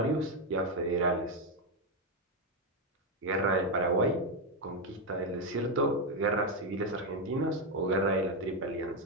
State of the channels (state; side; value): normal; both; correlation 0.06